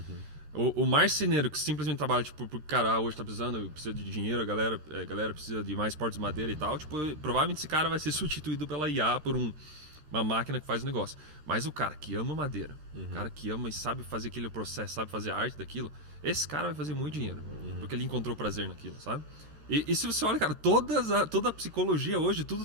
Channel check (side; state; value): left; late; 13 ms